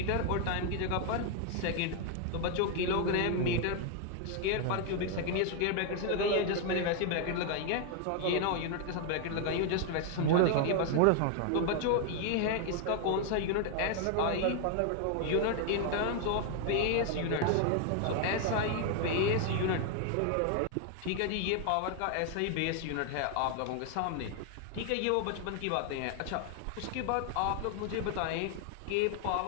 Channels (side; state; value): both; different; correlation 0.00